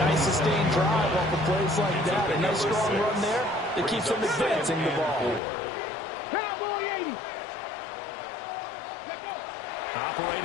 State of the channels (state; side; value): drops out; right; at 5.4 s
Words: nice sustained drive off of plays like that. A nice strong run there that keeps them advancing the ball. Cowboy 80.